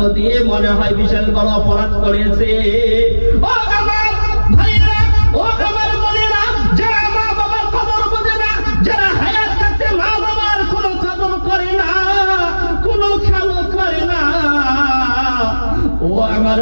দিয়ে মনে হয় বিশাল বড় অপরাধ করেছে। ও আমার ভাইয়েরা, ও আমার বোনেরা, যারা মা বাবার কদর বোঝে না, যারা হায়াত থাকতে মা বাবার কোনো কদর করে না, কোনো খেয়াল করে না, ও আমার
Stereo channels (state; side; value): inverted; both; correlation -1.00